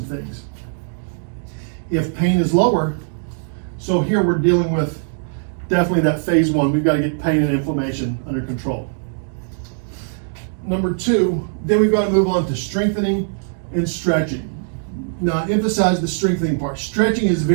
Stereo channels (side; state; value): left; silent; digital silence